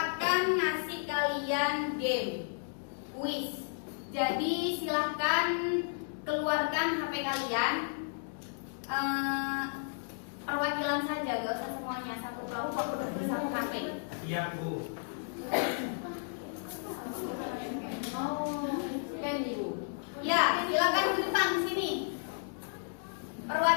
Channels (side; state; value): right; silent; digital silence